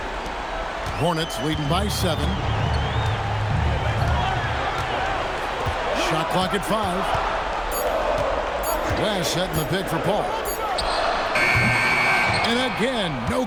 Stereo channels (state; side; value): identical; both; correlation 1.00